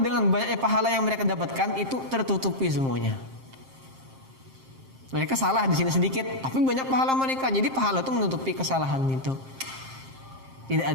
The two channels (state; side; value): late; left; 7.6 ms